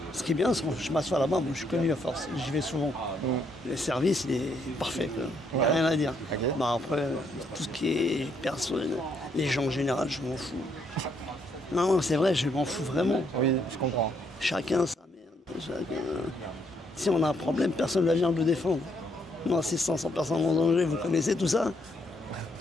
ce qui est bien, c'est que je m'assois là-bas. Moi, je suis connu à force. J'y vais souvent. Le service, il est parfait, quoi. Il n'y a rien à dire. Bah, après, tout ce qui est personne, les gens en général, je m'en fous. Non, c'est vrai, je m'en fous vraiment. Oui, je comprends. Chacun sa merde. Si on a un problème, personne ne vient le défendre. Non, c'est 500 personnes en danger, vous connaissez tout ça.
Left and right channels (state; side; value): normal; both; correlation 0.73